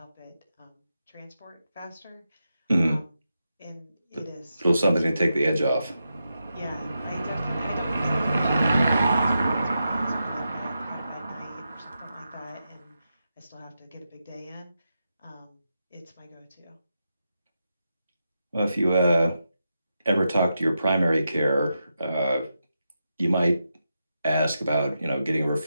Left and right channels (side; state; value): both; inverted; correlation -0.87